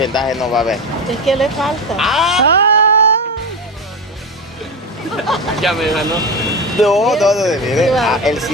no va a haber. Es que le falta. ¡Ah! Ya me ganó. No, mire. Ah, el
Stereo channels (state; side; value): normal; both; correlation 0.20